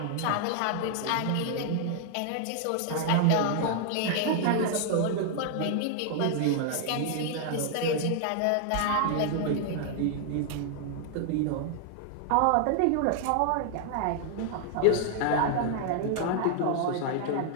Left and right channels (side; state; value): both; different; correlation 0.00